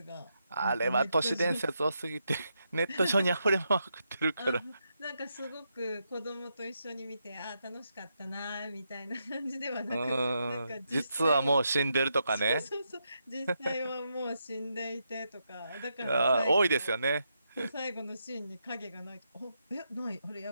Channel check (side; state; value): both; inverted; correlation -0.82